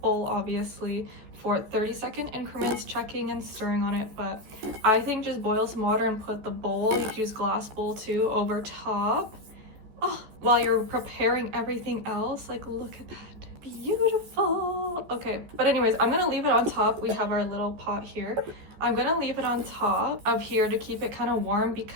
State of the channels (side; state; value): left; late; 14 ms